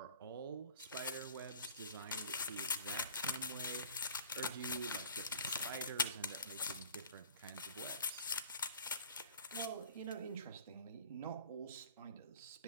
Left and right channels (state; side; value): inverted; both; correlation -0.46